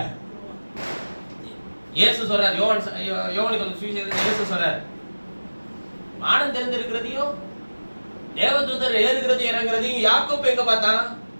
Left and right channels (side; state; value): both; inverted; correlation -1.00